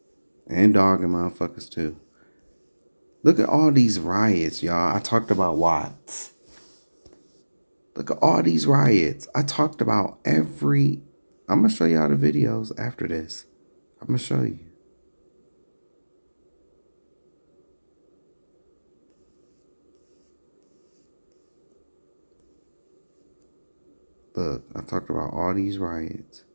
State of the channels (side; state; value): both; inverted; correlation -1.00